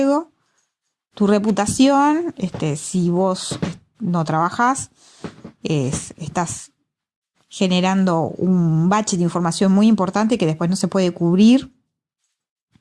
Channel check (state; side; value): identical; both; correlation 1.00